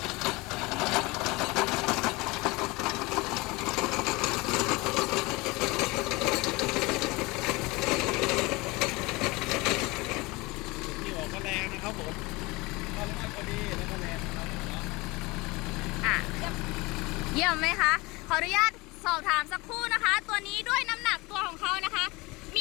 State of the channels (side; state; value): right; quieter; 23.6 dB